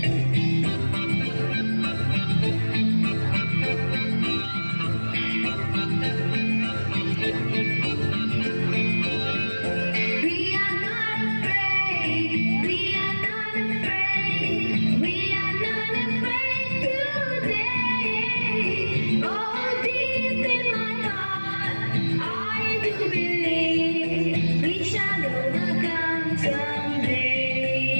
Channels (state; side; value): inverted; both; correlation -1.00